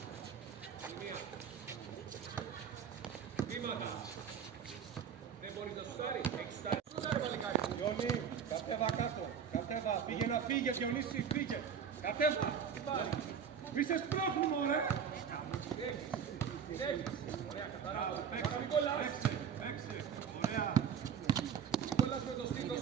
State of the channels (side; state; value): left; quieter; 7.6 dB